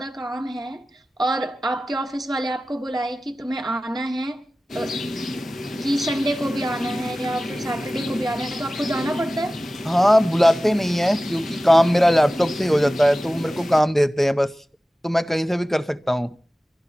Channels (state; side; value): normal; both; correlation 0.96